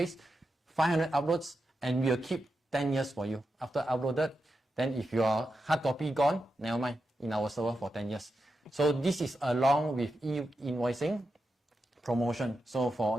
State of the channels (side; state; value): both; normal; correlation 0.88